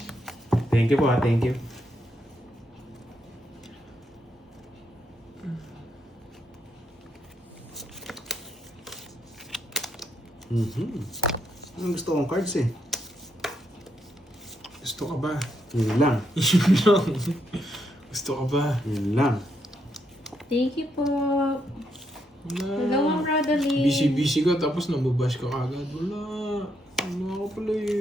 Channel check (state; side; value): normal; both; correlation 0.78